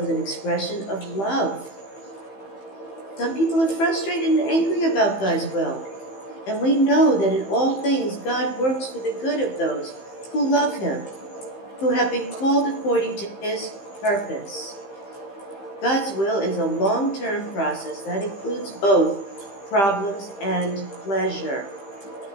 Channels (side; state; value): right; late; 15 ms